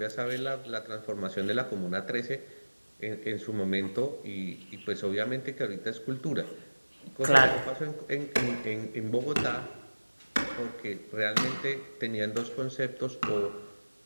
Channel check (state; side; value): inverted; both; correlation -1.00